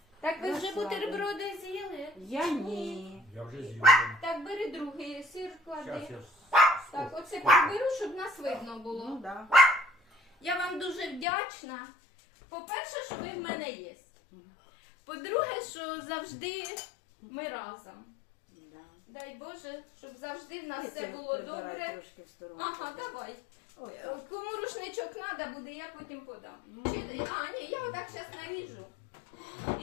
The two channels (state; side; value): drops out; right; at 11.2 s